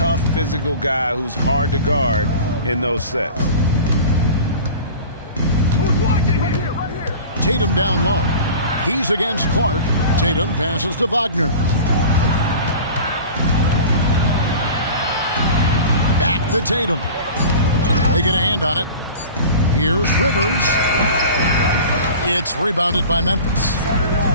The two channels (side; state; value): both; inverted; correlation -0.38